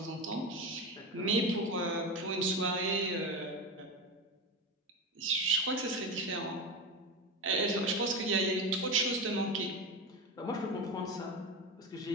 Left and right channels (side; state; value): both; normal; correlation 0.21